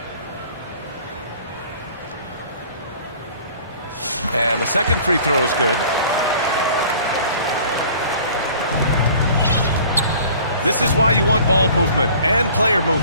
And the second free throw is good. This is why you want ball movement and player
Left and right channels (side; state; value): both; inverted; correlation -0.49